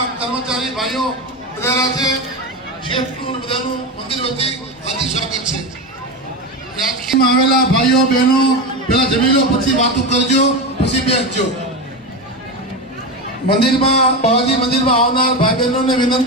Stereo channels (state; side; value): normal; both; correlation 0.18